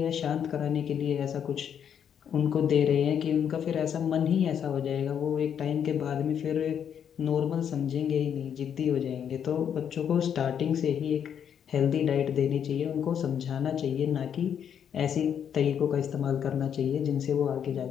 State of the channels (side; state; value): right; quieter; 8.5 dB